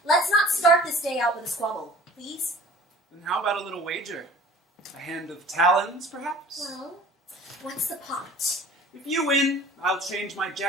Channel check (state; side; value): normal; both; correlation 0.46